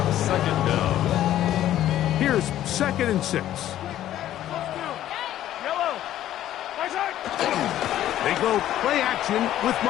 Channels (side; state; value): right; quieter; 12.6 dB